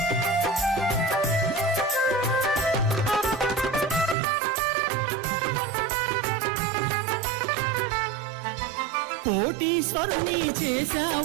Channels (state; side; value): drops out; left; at 4.2 s